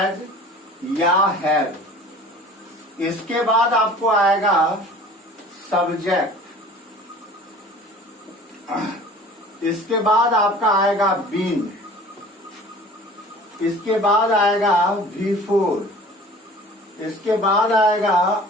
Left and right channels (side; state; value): both; normal; correlation 0.45